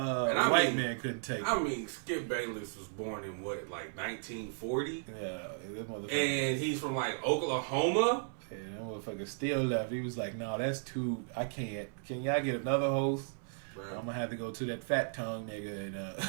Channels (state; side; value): silent; left; 54 dB below the other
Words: man couldn't take it. I mean, Skip Bayless was born in what, like 1940? Yeah, that motherfucker. And he's from like Oklahoma. Yeah, that motherfucker still left. He was like, "No, that's too. I can't. Can y'all get another host? Bro. I'm gonna have to go to that fat tongue nigga